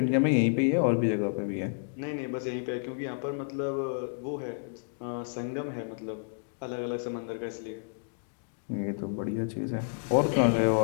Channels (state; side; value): silent; right; digital silence